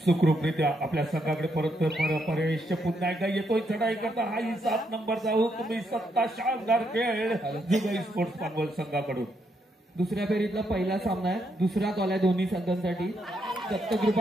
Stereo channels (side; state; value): both; normal; correlation 0.77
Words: सुखरूपरित्या आपल्या संघाकडे परत परेश पुन्हा एकदा येतोय चढाई करता. हाही 7 नंबरचा हुकमी सत्ता शानदार खेळ जुगाई स्पोर्ट्स पानवल संघाकडून. दुसऱ्या फेरीतला पहिला सामना आहे. दुसरा कॉल आहे दोन्ही संघांसाठी.